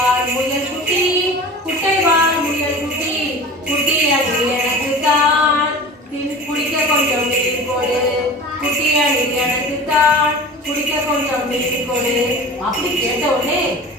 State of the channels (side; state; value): both; normal; correlation 0.36